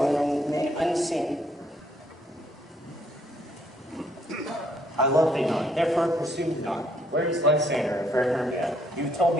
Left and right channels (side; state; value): both; normal; correlation 0.69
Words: and remain unseen. I love thee not, therefore pursue me not. Where is Lysander and fair Hermia? You've told